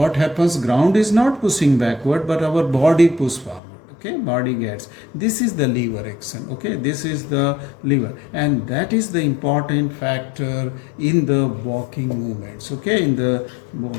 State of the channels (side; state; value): right; drops out; at 3.6 s